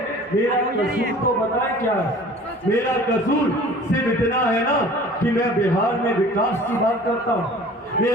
मेरा कसूर तो बताएं क्या है? मेरा कसूर सिर्फ इतना है ना कि मैं बिहार में विकास की बात करता हूँ।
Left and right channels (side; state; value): both; normal; correlation 0.46